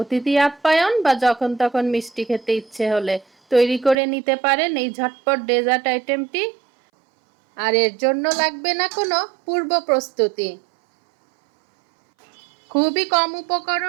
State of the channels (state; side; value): drops out; left; at 4.0 s